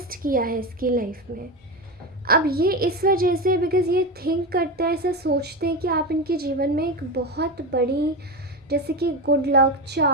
किया है इसकी लाइफ में। अब ये इस वजह से, बिकॉज़ ये थिंक करते हैं, ऐसा सोचते हैं कि आप इनके जीवन में एक बहुत बड़ी जैसे कि गुड लक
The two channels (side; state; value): both; normal; correlation 0.18